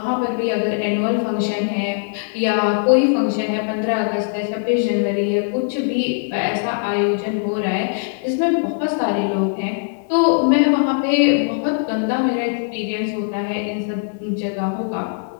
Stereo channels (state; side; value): silent; right; 65 dB below the other